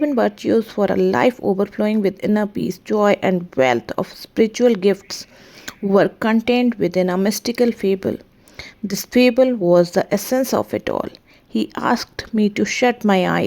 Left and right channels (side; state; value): both; identical; correlation 1.00